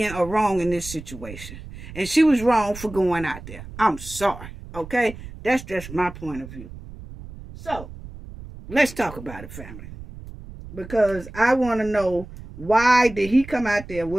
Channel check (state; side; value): noise; right; rumble, 14 dB below the sound